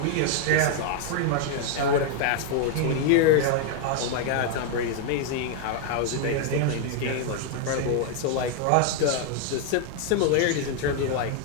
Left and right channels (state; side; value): different; both; correlation 0.00